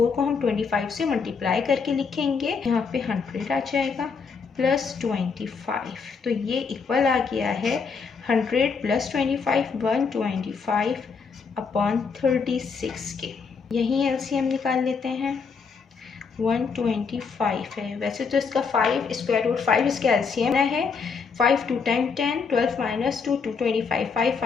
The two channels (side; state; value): right; quieter; 5.4 dB